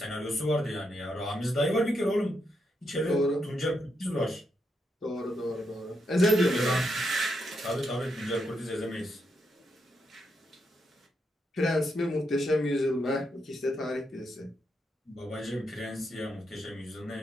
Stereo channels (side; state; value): both; normal; correlation 0.81